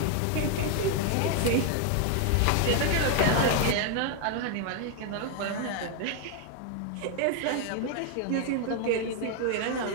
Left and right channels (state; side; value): different; both; correlation 0.00